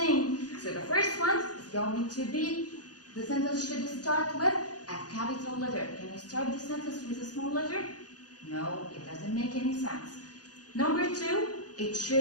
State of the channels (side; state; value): right; late; 0.68 ms